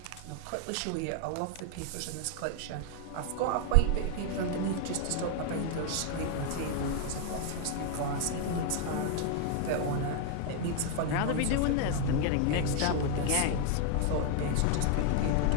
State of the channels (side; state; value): both; different; correlation 0.00